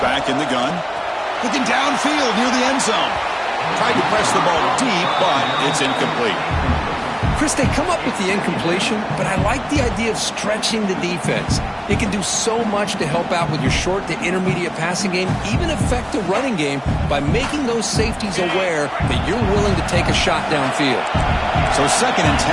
back in the gun. Looking downfield near the end zone. Tried to press the ball deep, but it's incomplete. Chris, they come up with the incompletion, but I like the idea of stretching the defense. It can do so much to help out with your short to intermediate passing game, even affect the running game by making those safeties aware that you're willing to take a shot downfield. So 2nd and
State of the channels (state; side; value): identical; both; correlation 1.00